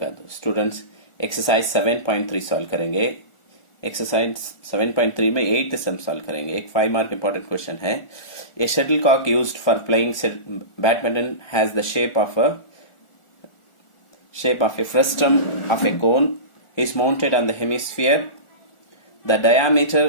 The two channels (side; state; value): right; late; 1.4 ms